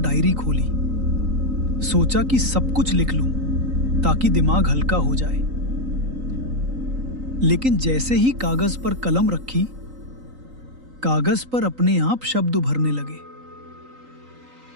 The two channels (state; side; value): late; left; 3.9 ms